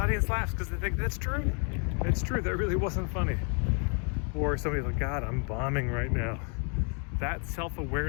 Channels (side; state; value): right; quieter; 39.5 dB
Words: laughs because they think, that's true. It's true, that really wasn't funny. Or somebody's like, God, I'm bombing right now. That